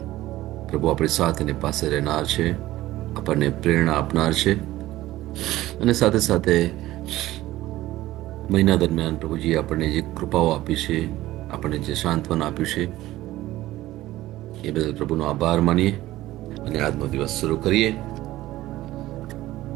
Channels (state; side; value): quieter; left; 16.1 dB